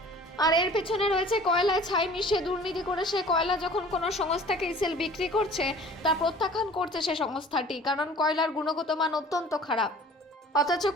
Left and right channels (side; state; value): both; normal; correlation 0.47